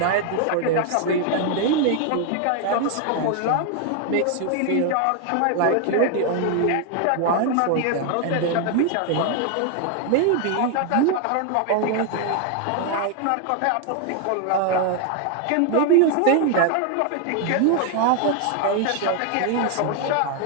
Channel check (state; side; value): different; both; correlation 0.01